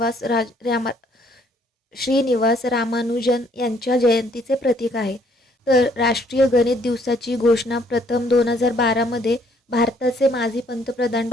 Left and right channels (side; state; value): both; normal; correlation 0.65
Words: श्रीनिवास रामानुजन यांच्या जयंतीचे प्रतीक आहे. तर राष्ट्रीय गणित दिवसाची घोषणा प्रथम 2012मध्ये भारताचे माजी पंतप्रधान